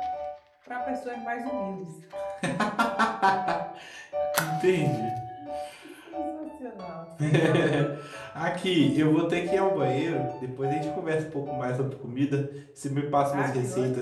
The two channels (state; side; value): identical; both; correlation 1.00